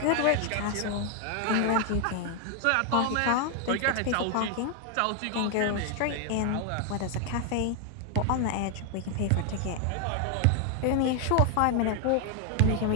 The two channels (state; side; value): different; both; correlation 0.00